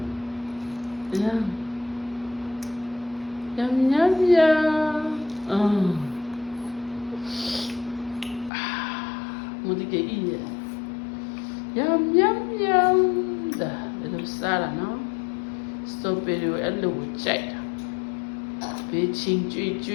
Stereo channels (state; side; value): drops out; right; at 8.5 s